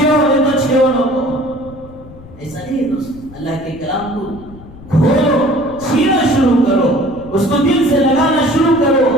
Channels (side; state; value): left; noise; rumble, 19 dB below the sound